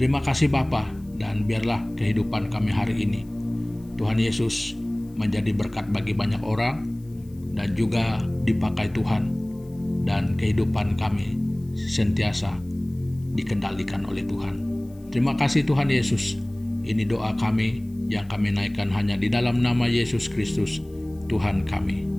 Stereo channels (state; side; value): noise; left; hiss, 30 dB below the sound